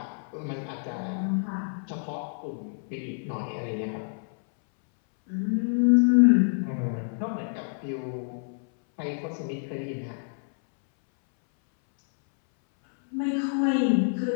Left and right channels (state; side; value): silent; right; 60 dB below the other